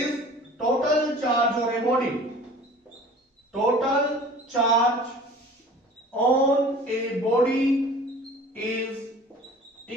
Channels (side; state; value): both; normal; correlation 0.44